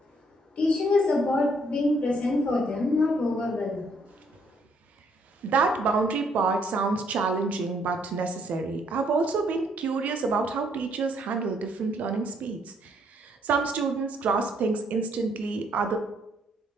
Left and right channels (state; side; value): normal; both; correlation 0.68